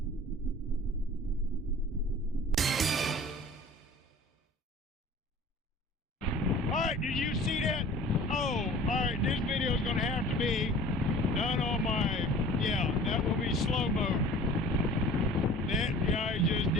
Alright, did you see that? Oh, alright, this video is going to have to be done on my, that will be slow-mo. That guy just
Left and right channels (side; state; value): both; normal; correlation 0.44